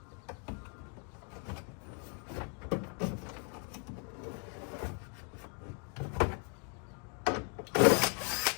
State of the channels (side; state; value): right; quieter; 39.7 dB